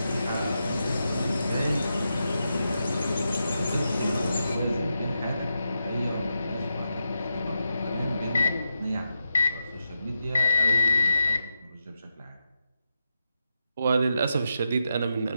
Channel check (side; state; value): both; inverted; correlation -0.86